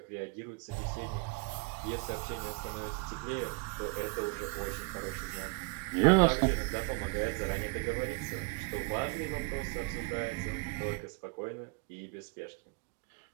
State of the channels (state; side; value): quieter; left; 28.7 dB